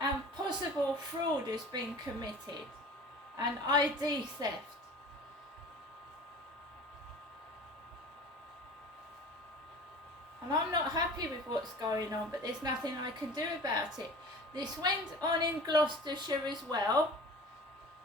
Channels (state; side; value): normal; both; correlation 0.40